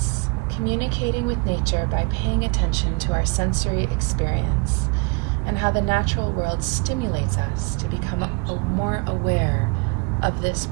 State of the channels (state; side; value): quieter; left; 31.1 dB